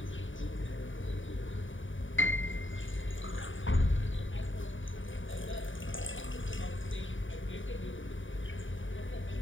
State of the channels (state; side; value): late; right; 0.56 ms